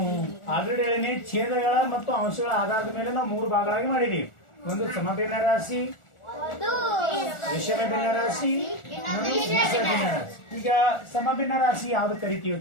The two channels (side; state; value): right; late; 1.4 ms